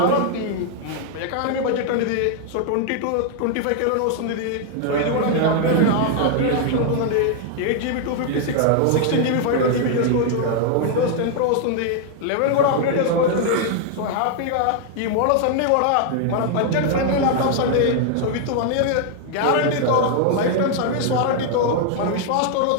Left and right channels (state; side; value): different; both; correlation 0.00